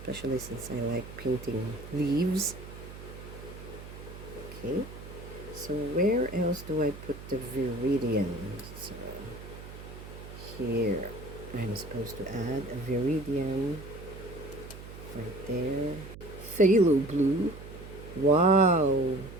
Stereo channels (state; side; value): noise; right; hum, 14 dB below the sound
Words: since I like painting leaves. Okay, so where else do I put the viridian? So here I'm supposed to add a viridian right there. Phthalo blue. Wow.